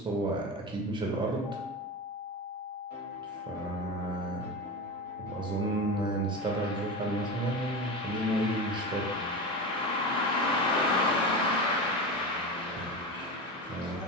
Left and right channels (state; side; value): normal; both; correlation 0.23